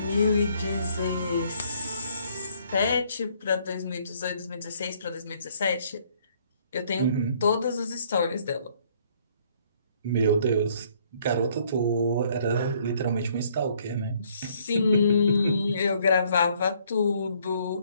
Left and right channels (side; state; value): both; inverted; correlation -0.65